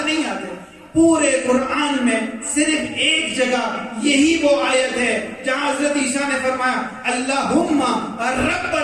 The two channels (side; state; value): both; identical; correlation 1.00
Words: نہیں آتے۔ پورے قرآن میں صرف ایک جگہ یہی وہ آیت ہے جہاں حضرت عیسیٰ نے فرمایا اللہم